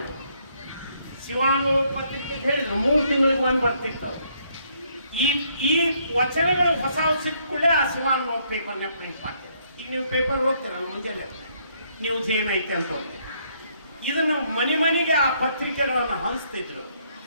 ಶಿವಾನು ಪತ್ರಿಕೆಗೆ ಹೇಳಿದ್ರು 3 ತಿಂಗಳಿಗೆ ಒಂದು ಬರ್ತಿತ್ತು. ಈ ವಚನಗಳು ಹೊಸ ಸಿಕ್ಕುಳ್ಳೇ ಆ ಶಿವಾನು ಪೇಪರ್ನ ಪ್ರಿಂಟ್ ಮಾಡ್ತೀವಿ. ಈಗ ನೀವು ಪೇಪರ್ ಹೋಗ್ತೀರಲ್ಲ ಮುಂಜಾನೆ, ನ್ಯೂಸ್ ಏನೈತೆ ಅಂತ ಹೋಗ್ತೀವಿ. ಇದನ್ನು ಮನೆಗೆ ಆ ಪತ್ರಿಕೆಗಳನ್ನು ಹಂಚ್ತಿದ್ರು.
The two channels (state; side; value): inverted; both; correlation -0.70